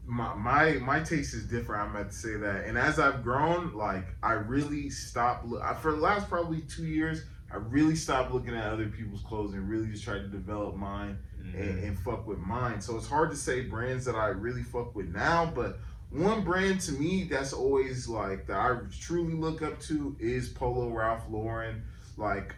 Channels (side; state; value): both; identical; correlation 1.00